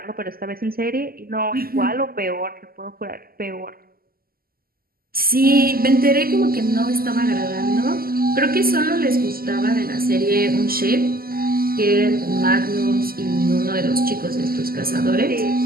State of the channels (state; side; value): late; left; 0.43 ms